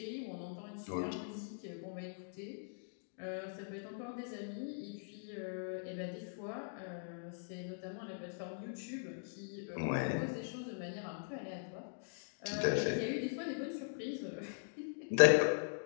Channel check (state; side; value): silent; right; digital silence